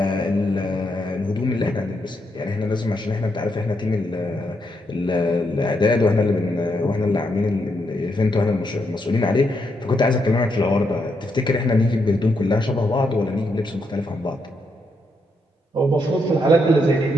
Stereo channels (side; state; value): both; normal; correlation 0.79